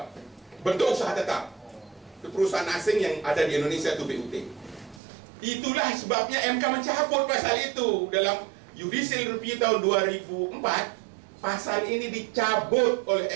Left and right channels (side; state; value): left; drops out; at 5.0 s